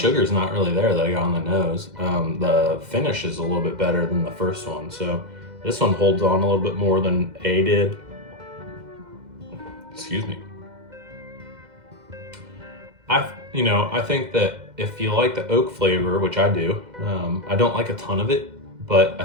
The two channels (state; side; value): late; left; 2.0 ms